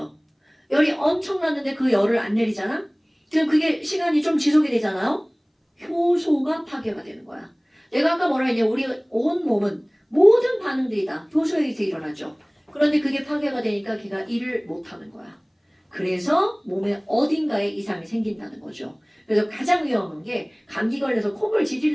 열이 엄청 났는데 그 열을 안 내리잖아? 그럼 그게 시간이 좀 지속이 되잖아요? 효소가 파괴가 되는 거야. 내가 아까 뭐라 했냐? 우리 온 몸은 모든 반응들이 다 효소에 의해서 일어나죠. 그런데 그게 파괴가 되니까 걔가 일을 못하는 거야. 그래서 몸에 어딘가에 이상이 생긴다는 거죠. 그래서 가장 위험한 게 감기 걸려서 콧물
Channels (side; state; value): both; identical; correlation 1.00